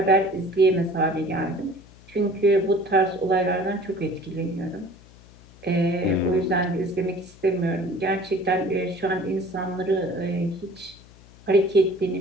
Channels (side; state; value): left; noise; hum, 23 dB below the sound